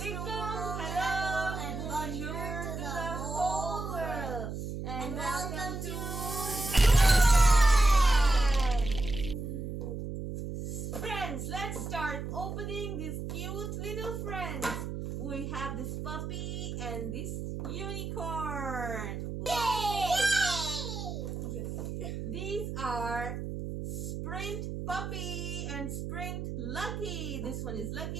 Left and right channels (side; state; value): right; noise; hum, 5 dB below the sound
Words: hello, and bonjour to the whole world, and welcome to Friends. Let's start opening these cute little friends. We have this puppy and this unicorn. Yay! These are Sprint Puppy and Sprint Lucky. This one is